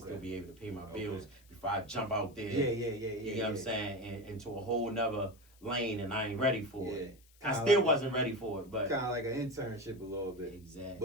be able to pay my bills before I jump out there. You know what I'm saying? And into a whole nother lane, and I ain't ready for it. I still wasn't ready for it, but kind of like an internship a little bit. Exactly.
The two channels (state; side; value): noise; left; hiss, 28 dB below the sound